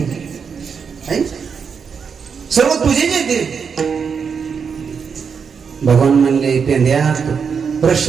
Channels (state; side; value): quieter; left; 6.2 dB